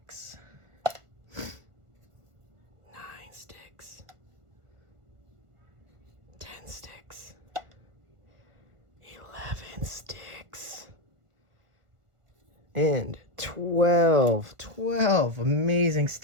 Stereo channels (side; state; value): left; late; 1.5 ms